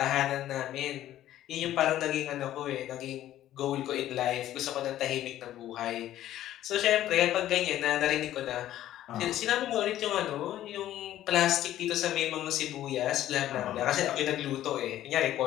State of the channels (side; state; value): right; quieter; 13.0 dB